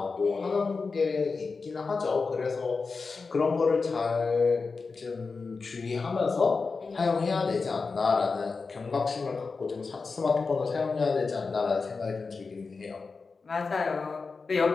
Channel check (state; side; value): quieter; right; 4.5 dB